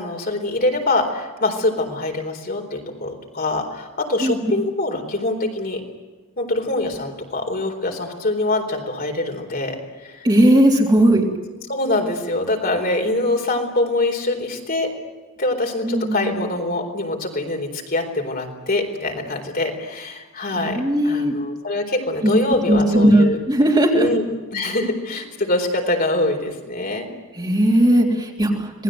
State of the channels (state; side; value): normal; both; correlation 0.44